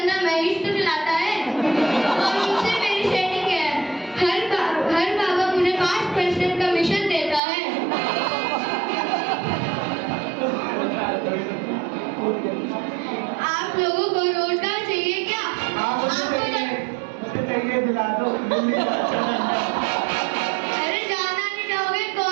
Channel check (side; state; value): left; drops out; at 7.4 s